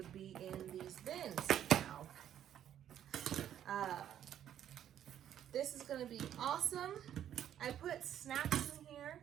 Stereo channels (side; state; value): left; quieter; 10.4 dB